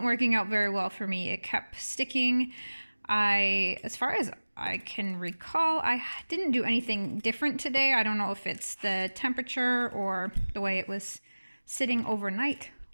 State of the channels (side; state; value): both; inverted; correlation -1.00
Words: working out very well for me. It kept sticking. As far as I can recall, I didn't do anything different today. I don't know if it's the temperature or the way it was sitting overnight